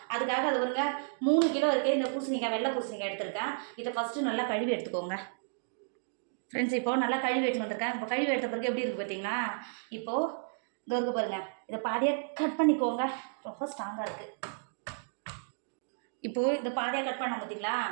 அதுக்காக அது வருங்க 3 கிலோ இருக்குது. இந்த பூசணிக்காய் வெள்ளை பூசணிக்காய் எடுத்திருக்கேன். இதை ஃபஸ்ட்டு நல்லா கழுவி எடுத்துக்கோங்க. ஃப்ரெண்ட்ஸ் இப்போது நல்லா கழுவி எடுத்துன்னு வந்திருக்கேன். இப்போ கழுவி எடுத்த பிறகு எப்படி இருக்குது பார்த்தீங்கன்னா, இப்போது இது இருக்கு பாருங்கள். இதை பாதியாக கட் பண்ணிக்கோங்க. ரொம்ப ஸ்ட்ராங்காக இருக்குது. இப்போது இந்த பாதியாக கட் பண்ண பார்த்தீங்களா,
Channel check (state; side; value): silent; left; digital silence